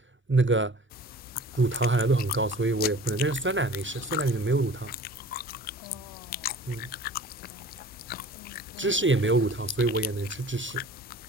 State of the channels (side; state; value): both; normal; correlation 0.44